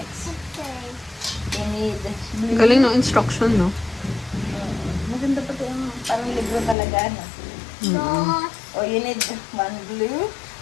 Okay. You need blue. Galing ng instruction, no? Maganda pa ito yung parang libro talaga, no? Dos. Oh, you need 1 blue,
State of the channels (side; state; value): right; drops out; at 6.8 s